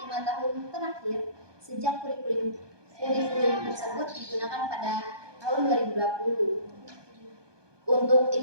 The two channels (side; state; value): left; late; 1.2 ms